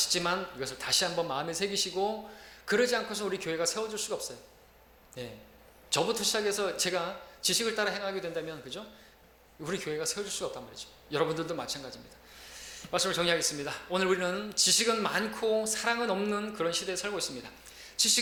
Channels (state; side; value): identical; both; correlation 1.00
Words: 이것을 다시 한번 마음에 새기시고, 그러지 않고서 우리 교회가 세워질 수가 없어요. 네. 저부터 시작해서 제가 지식을 따라 행하게 된다면, 그죠? 우리 교회가 세워질 수가 없단 말이죠. 여러분들도 마찬가지입니다. 말씀을 정리하겠습니다. 오늘 우리는 지식은 많고 사랑은 없는 그런 시대에 살고 있습니다.